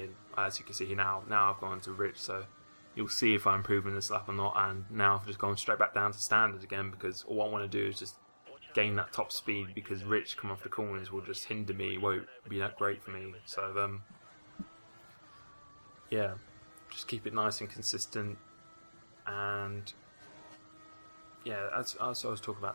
as you can see here now I've gone to rich, so you'll see if I'm improving this lap or not. And now I've just gone straight back down to standard again, because all I want to do is just gain that top speed, because rich come off the corners will just hinder me, it won't be that great for me. So yeah, just keep it nice and consistent. And yeah, as I was talking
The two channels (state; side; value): inverted; both; correlation -1.00